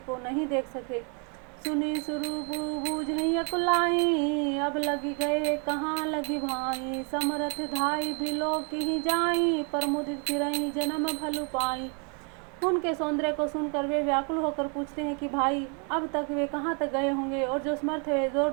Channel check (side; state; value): left; quieter; 37.9 dB